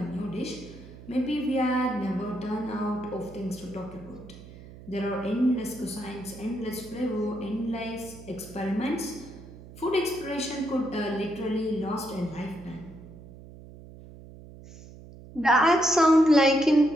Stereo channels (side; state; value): right; noise; hum, 18 dB below the sound